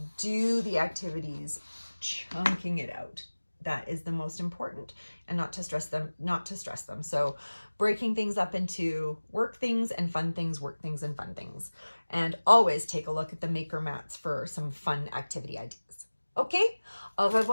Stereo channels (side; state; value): both; inverted; correlation -1.00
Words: Do the activities, chunking it out. That is the most important, and not to stress them. So breaking things up into work things and fun things, work things and fun things. And always take a look at the maker mats for some fun activity ideas. Okay? Au